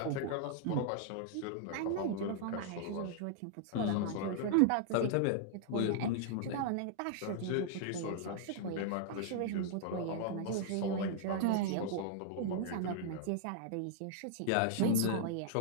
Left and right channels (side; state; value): both; different; correlation -0.01